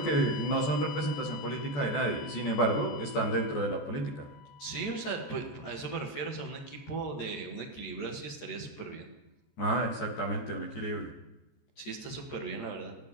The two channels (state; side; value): late; right; 13 ms